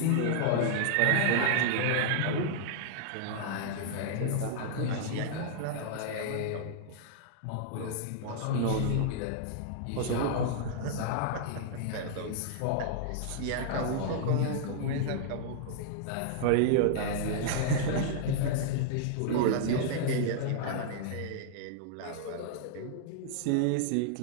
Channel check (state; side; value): different; both; correlation -0.01